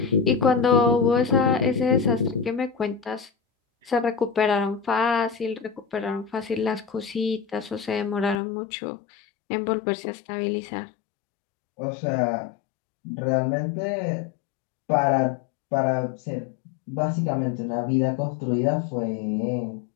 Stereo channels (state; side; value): drops out; right; at 8.4 s